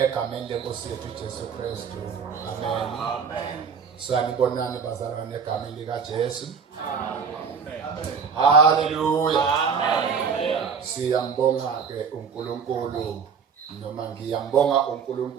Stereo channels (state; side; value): quieter; left; 6.2 dB